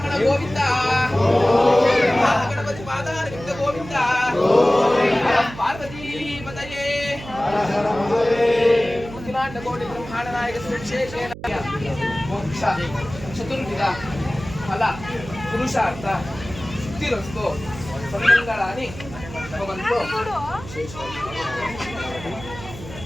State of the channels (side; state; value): right; noise; hum, 14 dB below the sound